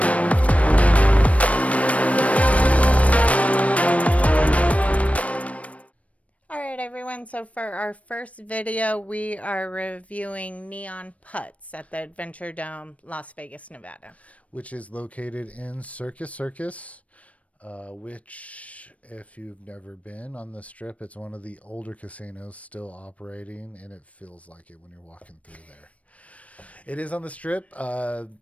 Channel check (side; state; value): right; late; 0.065 ms